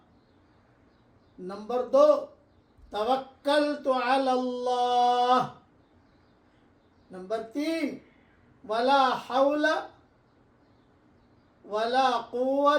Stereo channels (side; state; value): both; identical; correlation 1.00